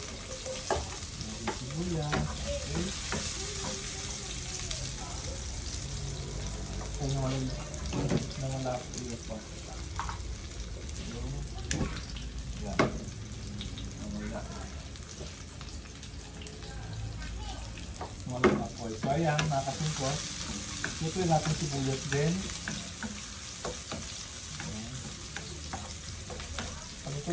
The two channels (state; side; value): identical; both; correlation 1.00